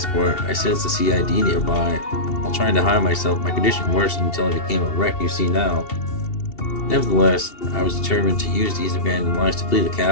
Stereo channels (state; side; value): late; right; 2.8 ms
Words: I sensed the CID nearby. While trying to hide myself, my condition worsened until I became a wreck you see now. Nevertheless, I was determined to use these abandoned lines to flee the